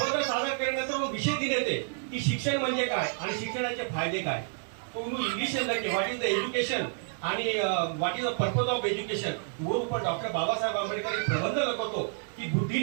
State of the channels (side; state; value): left; silent; digital silence